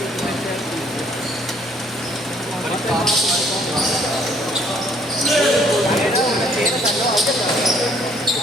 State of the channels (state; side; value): normal; both; correlation 0.62